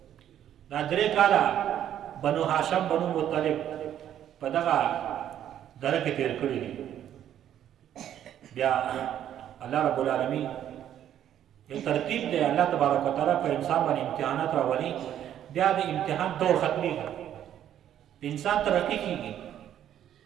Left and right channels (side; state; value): left; quieter; 10.7 dB